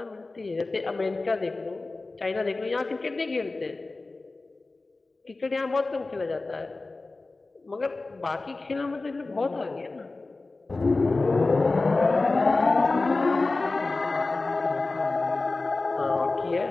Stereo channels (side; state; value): right; quieter; 3.4 dB